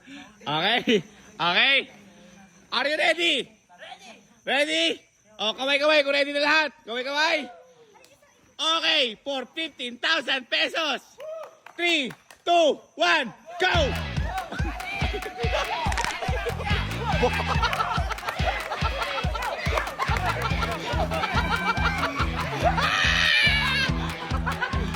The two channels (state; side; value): identical; both; correlation 1.00